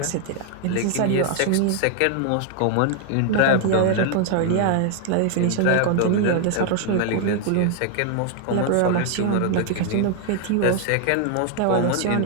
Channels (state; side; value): different; both; correlation 0.00